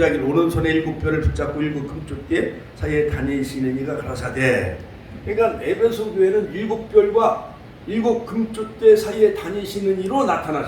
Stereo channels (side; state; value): both; identical; correlation 1.00